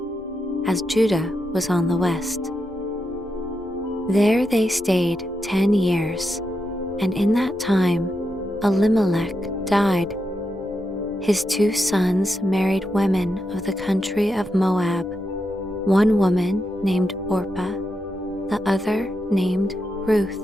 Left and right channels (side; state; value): both; normal; correlation 0.85